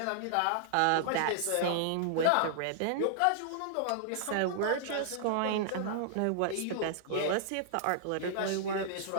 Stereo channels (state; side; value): different; both; correlation -0.01